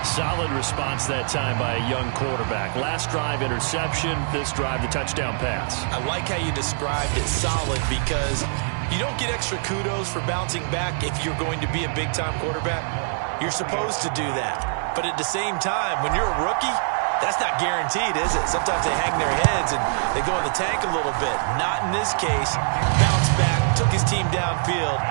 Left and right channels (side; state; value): left; silent; 58 dB below the other